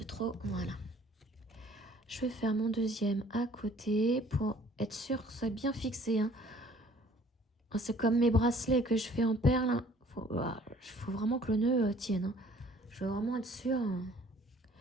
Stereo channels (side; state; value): both; normal; correlation 0.56